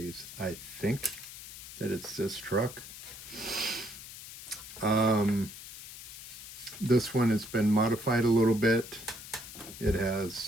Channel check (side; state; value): left; noise; hiss, 13 dB below the sound